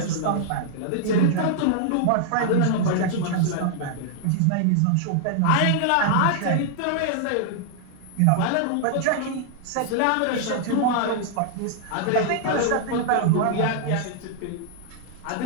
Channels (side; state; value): both; different; correlation -0.01